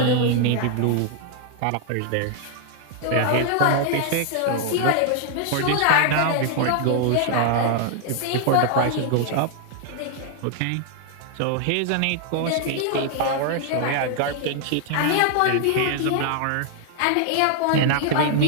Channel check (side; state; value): both; different; correlation 0.00